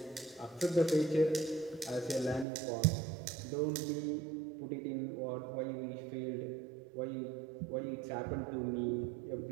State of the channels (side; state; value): left; drops out; at 2.5 s